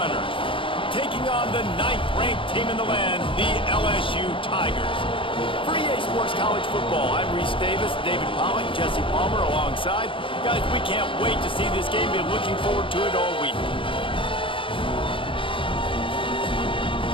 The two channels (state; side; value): late; right; 0.25 ms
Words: taking on the 9th-ranked team in the land, the LSU Tigers. For EA Sports College Football, I'm Reese Davis, David Pollock, Jesse Palmer alongside. Guys, we can't wait to see this game. Been looking forward to it all week.